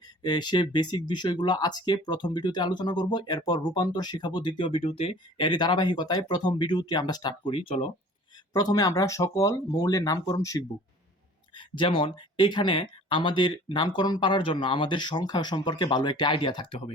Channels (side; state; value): both; normal; correlation 0.47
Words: সে বেসিক বিষয়গুলো আজকে প্রথম ভিডিওতে আলোচনা করব, এরপর রূপান্তর শেখাবো দ্বিতীয় ভিডিওতে। এরই ধারাবাহিকতায় প্রথম ভিডিওটি আমরা স্টার্ট করি। চলো, প্রথমে আমরা সকল মৌলের নামকরণ শিখব। যেমন এখানে আমাদের নামকরণ পারার জন্য আমাদের সংখ্যা সম্পর্কে ভালো একটা আইডিয়া থাকতে হবে।